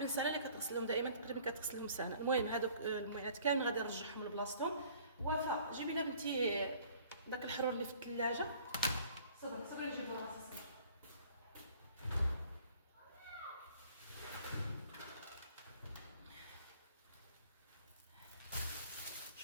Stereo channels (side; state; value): both; inverted; correlation -0.53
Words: سنه اللي كتغسلهم دائما، تقريبا كتغسلهم سنه. المهم هذوك الموينات كامل غادي نرجعهم لبلاصتهم. وفاء جيبي لنا بنتي داك الحرور اللي في الثلاجه. صبري نجيب راسي.